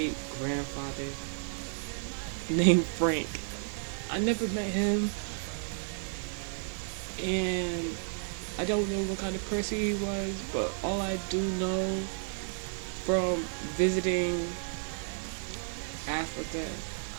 grandfather named Frank. I never met him, and I don't know what kind of person he was, but all I do know from visiting Africa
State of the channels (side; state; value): left; silent; digital silence